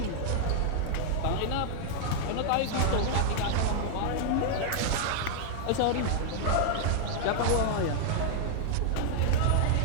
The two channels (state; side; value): different; both; correlation -0.01